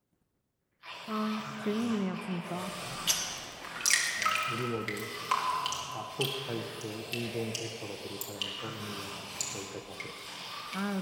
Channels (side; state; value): both; identical; correlation 1.00